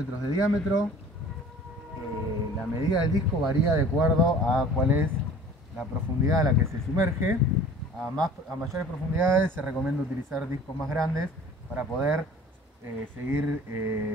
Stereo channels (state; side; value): normal; both; correlation 0.46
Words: de diámetro. La medida del disco varía de acuerdo a cuál es la profundidad a la que se sumerge. A mayores profundidades se recomienda utilizar discos más grandes para poder